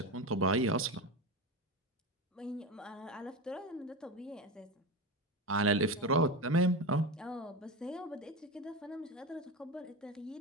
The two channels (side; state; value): both; normal; correlation 0.20